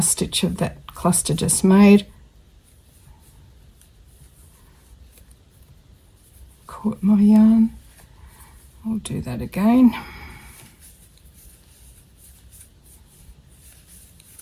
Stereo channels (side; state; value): both; identical; correlation 1.00